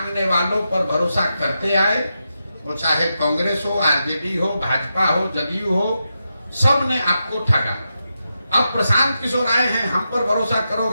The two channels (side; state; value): both; inverted; correlation -0.87